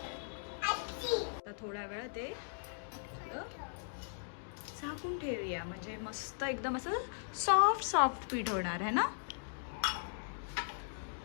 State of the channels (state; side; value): silent; right; digital silence